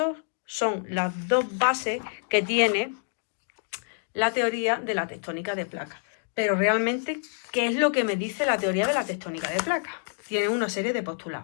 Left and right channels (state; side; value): silent; right; digital silence